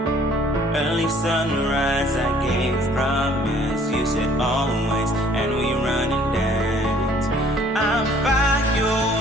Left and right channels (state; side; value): normal; both; correlation 0.58